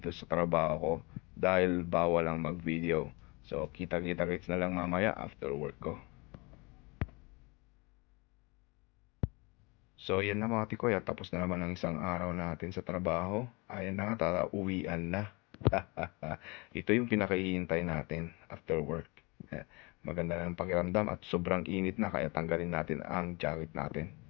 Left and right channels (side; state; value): right; quieter; 27.8 dB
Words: sa trabaho ko dahil bawal lang mag-video. So kita-kits na lang mamaya after work ko. So yan na mga tikoy, at tapos na naman ang isang araw natin sa trabaho. Ayan na nga, uwian na. Ito yung pinakahihintay natin after work. Maganda na ang pakiramdam at sobrang init na, kaya tanggalin natin ang jacket natin.